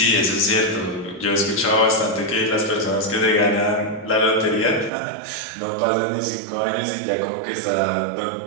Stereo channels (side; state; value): left; drops out; at 4.9 s